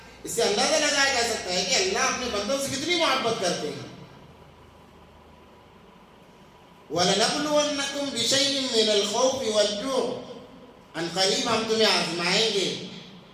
اس سے اندازہ لگایا جا سکتا ہے کہ اللہ اپنے بندوں سے کتنی محبت کرتے ہیں۔ وَلَنَبْلُوَنَّكُمْ بِشَيْءٍ مِّنَ الْخَوْفِ وَالْجُوعِ، ان قریب ہم تمہیں آزمائیں گے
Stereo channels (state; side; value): identical; both; correlation 1.00